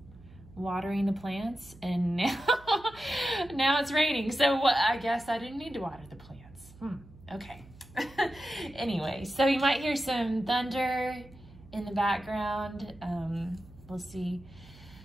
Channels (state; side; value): noise; right; hum, 21 dB below the sound